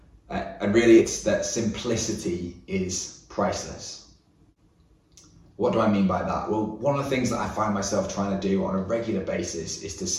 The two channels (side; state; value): both; identical; correlation 1.00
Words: And really it's that simplicity is priceless. What do I mean by that? Well, one of the things that I find myself trying to do on a regular basis is to